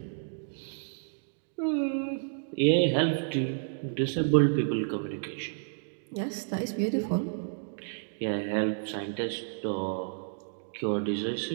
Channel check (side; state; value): left; silent; digital silence